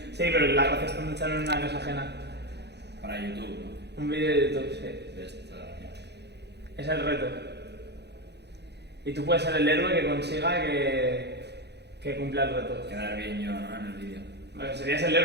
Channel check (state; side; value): late; left; 0.49 ms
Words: Sí, pero la gracia está en ducharme en una casa ajena. Para YouTube, ¿no? Un vídeo de YouTube, sí. De esta... Es el reto. Y tú puedes ser el héroe que consiga que cumpla el reto. Quedar bien yo, ¿no? En el vídeo. Bueno, serías el